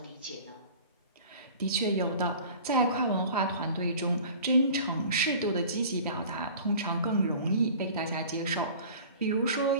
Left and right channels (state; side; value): inverted; both; correlation -0.43